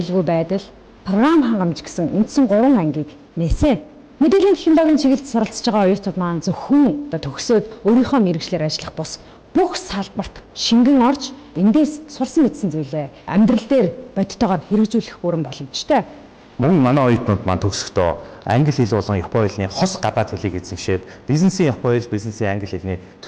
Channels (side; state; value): both; identical; correlation 1.00